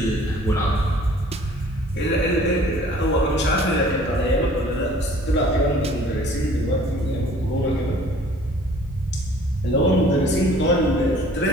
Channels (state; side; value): normal; both; correlation 0.53